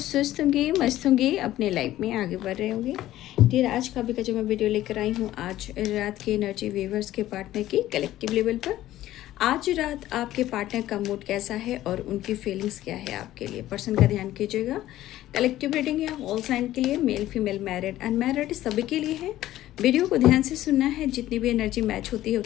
होंगे, मस्त होंगे, अपने लाइफ में आगे बढ़ रहे होंगे। फिर आज का भी का जो मैं वीडियो लेकर आई हूँ, आज रात की एनर्जी व्यूवर्स के पार्टनर की कलेक्टिव लेवल पर। आज रात आपके पार्टनर का मूड कैसा है और उनकी फीलिंग्स क्या है आपके लिए, पर्सन का ध्यान कीजिएगा। कलेक्टिव रीडिंग है ऑल साइन के लिए, मेल फीमेल मैरिड अनमैरिड सभी के लिए है। वीडियो को ध्यान से सुनना है, जितनी भी एनर्जी मैच होती है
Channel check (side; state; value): right; quieter; 14.3 dB